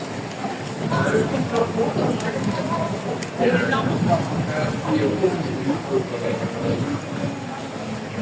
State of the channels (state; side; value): identical; both; correlation 1.00